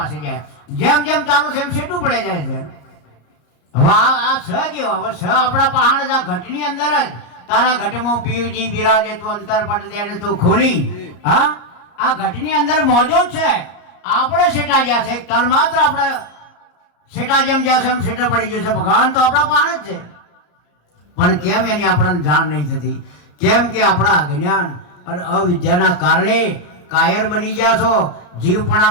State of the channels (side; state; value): right; late; 34 ms